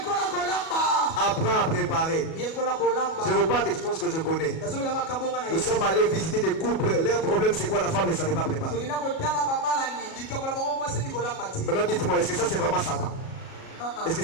Apprends à préparer. Je vous parle des choses que je connais. Nous sommes allés visiter des couples. Leur problème c'est quoi? La femme ne savait pas préparer. Maintenant dites-moi, est-ce que ça c'est vraiment Satan? Est-ce que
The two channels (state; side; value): late; right; 37 ms